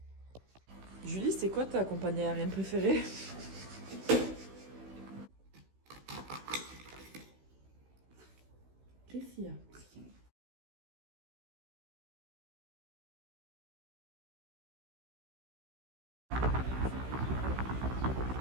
Julie, c'est quoi ta compagnie aérienne préférée? Qu'est-ce qu'il y a?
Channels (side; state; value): left; late; 16 ms